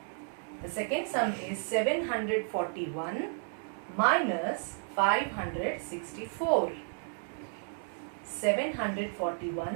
The second sum is 741 minus 564.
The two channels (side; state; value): left; silent; 56 dB below the other